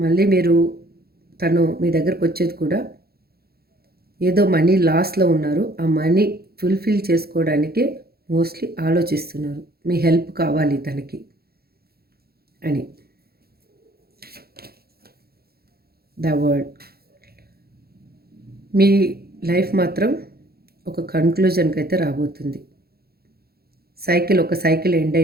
మళ్ళీ తను మీ దగ్గరకు వచ్చేది కూడా ఏదో మనీ లాస్లో ఉన్నారు, ఆ మనీ ఫుల్ఫిల్ చేసుకోవడానికే మోస్ట్లీ ఆలోచిస్తున్నారు, మీ హెల్ప్ కావాలి తనకి అని. The word. మీ లైఫ్ మాత్రం ఒక కన్క్లూజన్కి అయితే రాబోతుంది. ఒక సైకిల్ ఎండ్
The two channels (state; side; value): late; left; 0.45 ms